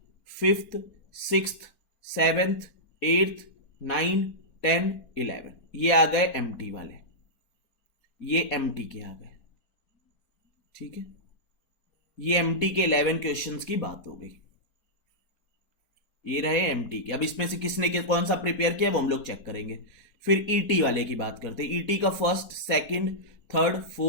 fifth, sixth, seventh, eighth, 9, 10, 11 ये आ गए एमटी वाले, ये एमटी के आ गए। ठीक है, ये एमटी के 11 क्वेश्चंस की बात हो गई। ये रहे एमटी के। अब इसमें से किसने कौन सा प्रिपेयर किया वो हम लोग चेक करेंगे। फिर ईटी वाले की बात करते हैं। ईटी का first, second, third,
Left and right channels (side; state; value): right; late; 4.3 ms